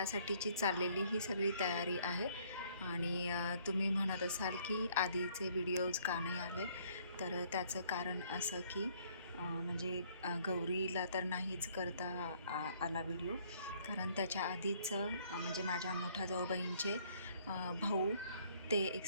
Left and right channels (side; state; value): both; inverted; correlation -0.63